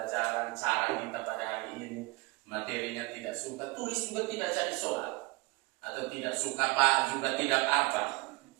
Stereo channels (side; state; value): left; quieter; 24.0 dB